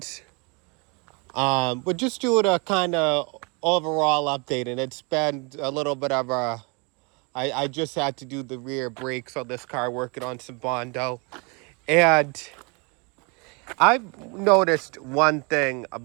We're just doing a kind of overall update, and it's been a little bit of a. I just had to do the rear brakes on this car, working on some Bondo, and I've noticed one thing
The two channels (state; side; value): quieter; left; 31.6 dB